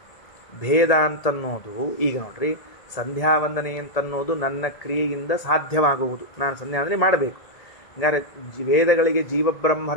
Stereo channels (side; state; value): right; late; 1.7 ms